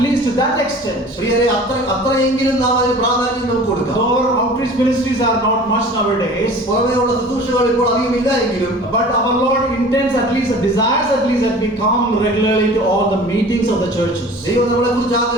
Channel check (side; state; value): both; normal; correlation 0.43